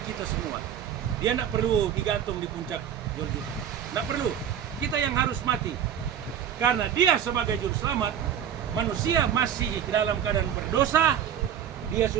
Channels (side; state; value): left; quieter; 9.2 dB